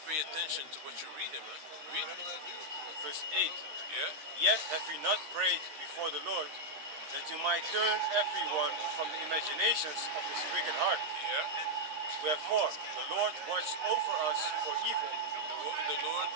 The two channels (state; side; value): late; left; 13 ms